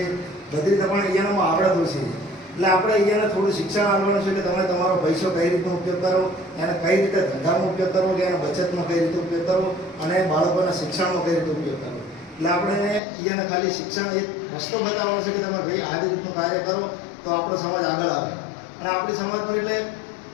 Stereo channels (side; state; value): right; drops out; at 13.0 s